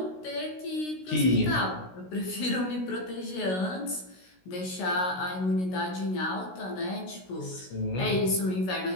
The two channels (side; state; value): right; late; 16 ms